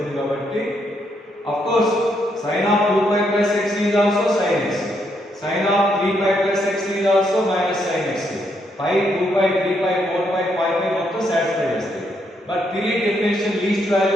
కాబట్టి of course sin of 2 pi plus x is also sin x. Sin of 3 pi plus x is also minus sin x. Pi 2 pi 3 pi 4 pi 5 pi మొత్తం సాటిస్ఫై చేస్తుంది. But period definition least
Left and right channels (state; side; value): normal; both; correlation 0.76